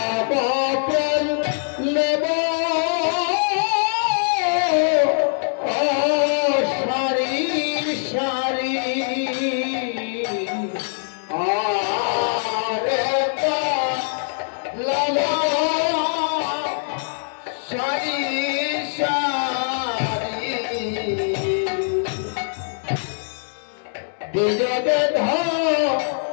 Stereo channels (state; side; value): silent; right; digital silence